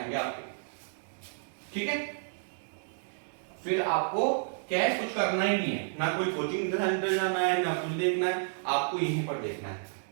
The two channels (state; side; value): silent; left; digital silence